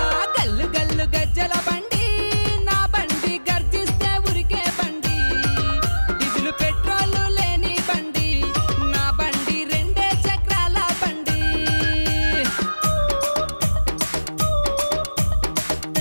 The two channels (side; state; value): both; inverted; correlation -1.00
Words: గల్లు గల్లు గజ్జల బండి నా బండి గర్జిస్తే ఉరికే బండి డీజిల్ పెట్రోల్ లేని బండి నా బండి రెండే చక్రాల బండి